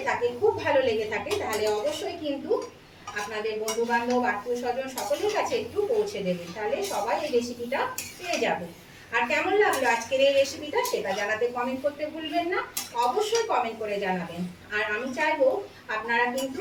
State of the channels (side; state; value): both; identical; correlation 1.00